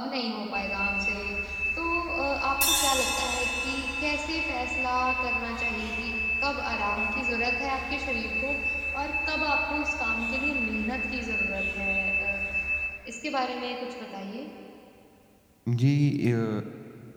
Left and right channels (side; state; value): both; identical; correlation 1.00